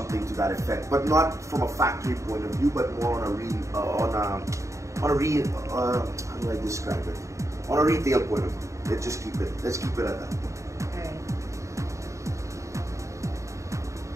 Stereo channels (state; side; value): late; left; 0.15 ms